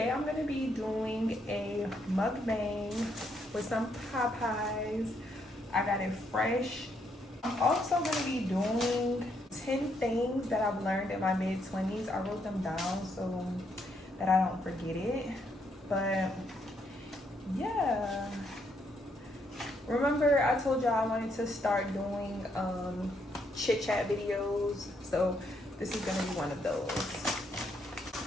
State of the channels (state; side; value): normal; both; correlation 0.75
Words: I'm gonna be doing a mukbang with some Popeyes. I got it fresh. I'm also gonna be doing 10 things that I've learned in my mid-20s. I wrote them down so that I don't forget it. But yeah. Remember I told y'all I wanted to start doing chit chat videos. So this is gonna be one of those.